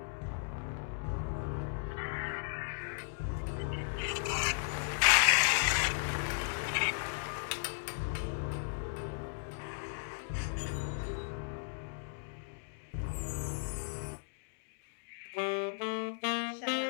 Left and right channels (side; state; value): right; silent; digital silence